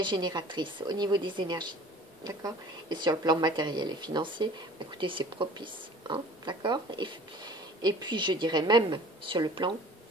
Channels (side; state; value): both; normal; correlation 0.46